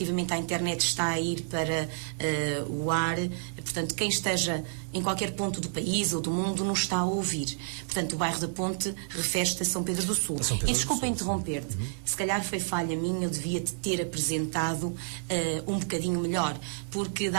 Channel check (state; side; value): silent; left; digital silence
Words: à internet está a ir para o ar, portanto quem esteja em qualquer ponto do país ou do mundo nos está a ouvir. Portanto, o bairro da Ponte refere-se a São Pedro do Sul. E desculpa interromper-te, se calhar foi falha minha, eu devia-te ter apresentado um bocadinho melhor, porque